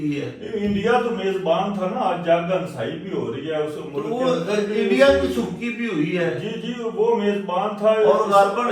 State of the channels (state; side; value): identical; both; correlation 1.00